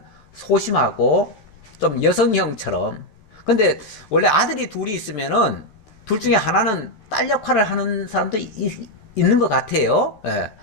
소심하고 좀 여성형처럼. 근데 원래 아들이 둘이 있으면은 둘 중에 하나는 딸 역할을 하는 사람도 있는 것 같아요.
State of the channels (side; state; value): right; late; 14 ms